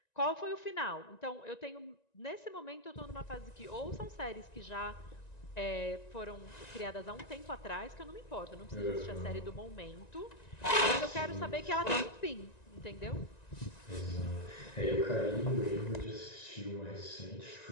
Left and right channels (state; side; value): late; right; 1.9 ms